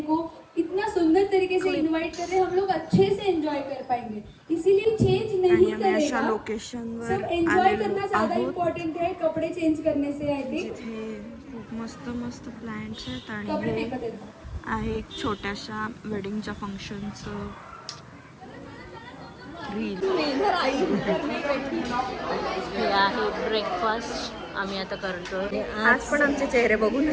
को इतना सुंदर तरीके से इनवाइट कर रहे हैं, हम लोग अच्छे से एंजॉय कर पाएंगे, इसीलिए चेंज आणि नहीं आम्ही अशा करेगा। लोकेशनवर सब एंजॉय करना आलेलो ज्यादा आहोत इम्पोर्टेंट है कपड़े चेंज करने से। आई थिंक जिथे खूप मस्त मस्त प्लॅन्स आहेत आणि कपड़े हे फेकत आहेत. आहे एक छोट्याशा वेडिंगच्या फंक्शनचं रील. हे आहे ब्रेकफास्ट आम्ही आता करतो. आज पण आमचे चेहरे बघू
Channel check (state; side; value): identical; both; correlation 1.00